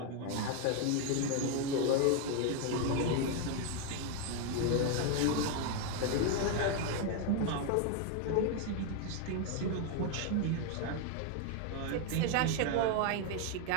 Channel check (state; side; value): different; both; correlation 0.01